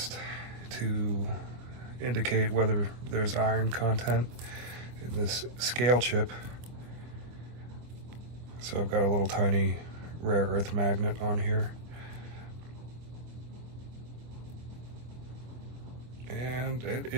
to indicate whether there's iron content in this scale chip. So I've got a little tiny rare earth magnet on here. And it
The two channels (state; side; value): late; left; 25 ms